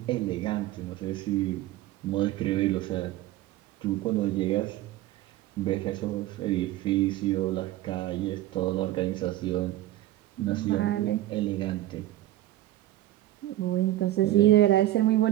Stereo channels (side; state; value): left; quieter; 15.0 dB